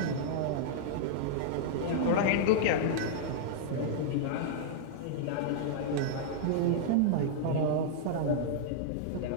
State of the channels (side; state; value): both; different; correlation -0.01